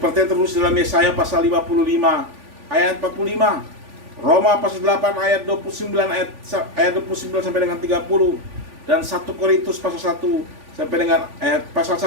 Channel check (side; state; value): left; late; 3.5 ms